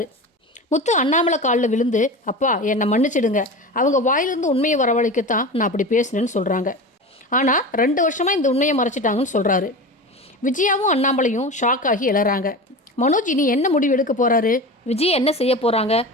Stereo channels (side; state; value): both; normal; correlation 0.29